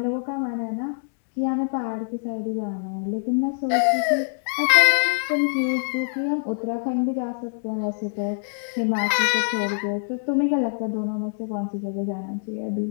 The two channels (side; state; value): right; silent; digital silence